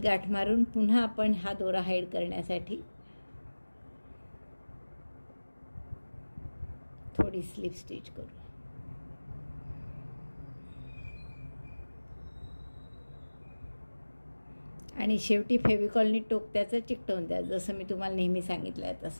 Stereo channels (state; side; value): inverted; both; correlation -1.00